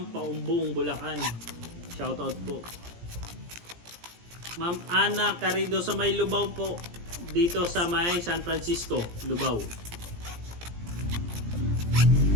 Paumbong, Bulacan. Shoutout po. Ma'am Ana Carido sa may Lubao po. Dito sa may San Francisco, Lubao.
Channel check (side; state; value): left; late; 17 ms